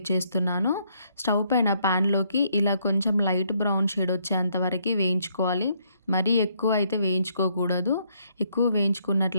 చేస్తున్నాను. స్టవ్ పైన ప్యాన్లోకి ఇలా కొంచెం లైట్ బ్రౌన్ షేడ్ వచ్చేంత వరకు వేయించుకోవాలి. మరీ ఎక్కువ అయితే వేయించుకోకూడదు. ఎక్కువ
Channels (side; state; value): both; inverted; correlation -0.71